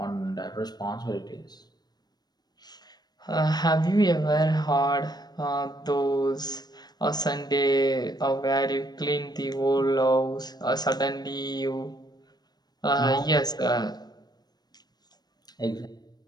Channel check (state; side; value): late; right; 0.19 ms